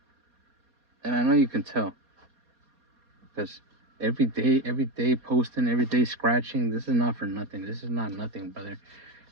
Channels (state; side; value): late; left; 4.2 ms